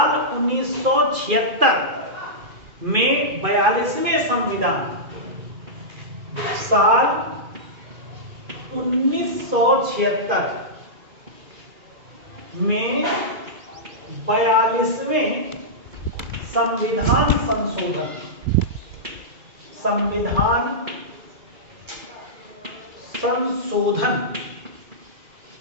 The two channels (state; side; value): late; left; 2.4 ms